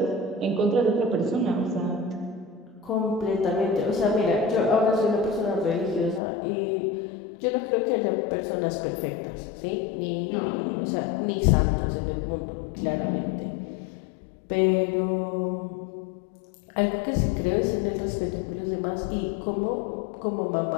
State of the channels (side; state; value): right; drops out; at 6.2 s